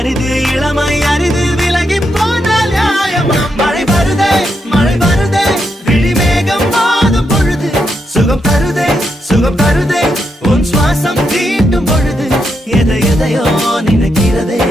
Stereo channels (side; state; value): both; normal; correlation 0.82